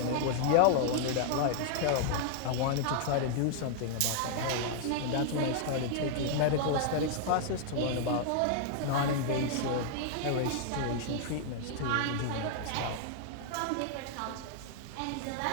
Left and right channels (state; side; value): different; both; correlation 0.00